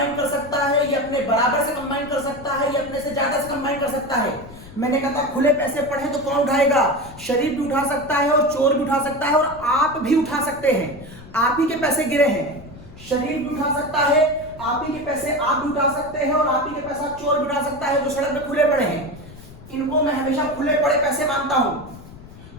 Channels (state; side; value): noise; left; rumble, 18 dB below the sound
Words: कर सकता है, ये अपने बराबर से कंबाइन कर सकता है, ये अपने से ज्यादा से कंबाइन कर सकता है। मैंने कहा था खुले पैसे पड़े तो कौन उठाएगा? शरीफ भी उठा सकता है और चोर भी उठा सकता है और आप भी उठा सकते हैं। आप ही के पैसे गिरे हैं, शरीफ भी उठा सकता है, आप ही के पैसे आप भी उठा सकते हैं और आप ही के पैसा चोर भी उठा सकता है जो सड़क पे खुले पड़े हैं। इनको मैं हमेशा खुले पड़े पैसे मानता हूं।